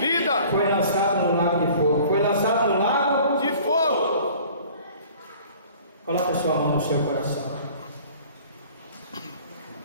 foi lançado no lago de fogo. Foi lançado no lago de fogo. Coloque sua mão no seu coração.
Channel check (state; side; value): inverted; both; correlation -0.48